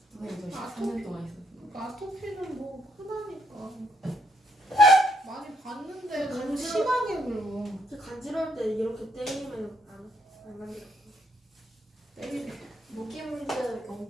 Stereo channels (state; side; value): normal; both; correlation 0.73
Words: 선생님 저 아토피? 13년 동안 있었어요. 그러니까 아토피는 뭐 흔하니까. 많이 봤는데 너무 간지러- 심하게 긁어. 간지러울 때 이렇게 때리면 안 간지러. 때리네. 모기 물들